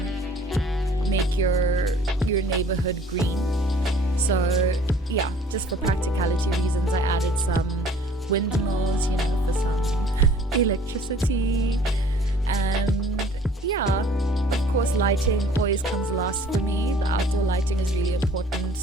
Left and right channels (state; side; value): normal; both; correlation 0.53